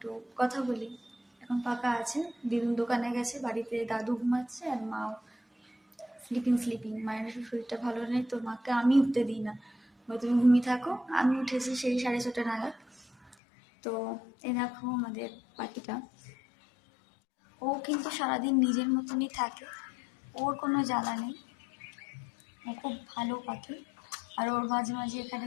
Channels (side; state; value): right; drops out; at 13.4 s